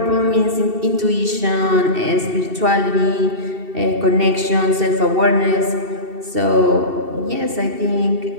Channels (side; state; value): left; late; 2.7 ms